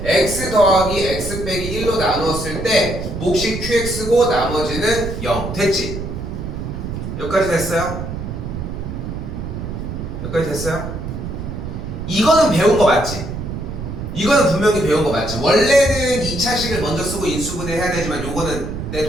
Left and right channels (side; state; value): right; noise; rumble, 6 dB below the sound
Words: x 더하기 x 빼기 1로 나누었을 때 몫이 qx고 나머지는 0 됐지? 여기까지 됐어요? 여기까지 됐어요? 이거는 배운 거 맞지? 이거는 분명히 배운 거 맞지? 원래는 2차식을 먼저 쓰고 인수분해 해야 되지만 요거는 내